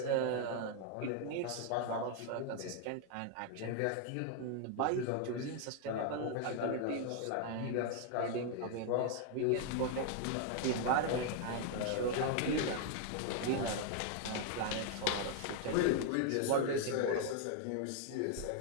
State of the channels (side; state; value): both; different; correlation 0.00